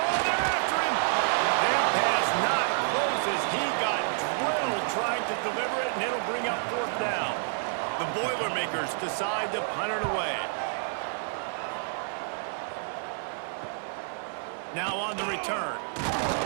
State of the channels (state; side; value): silent; left; 57 dB below the other